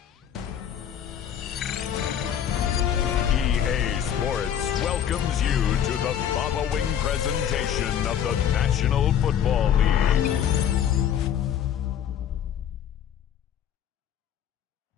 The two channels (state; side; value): quieter; right; 9.4 dB